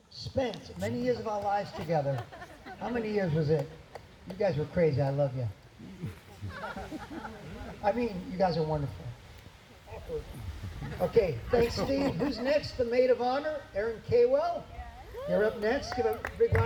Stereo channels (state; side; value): identical; both; correlation 1.00